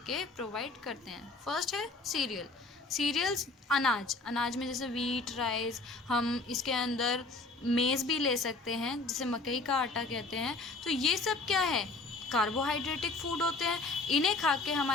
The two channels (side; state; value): right; quieter; 3.4 dB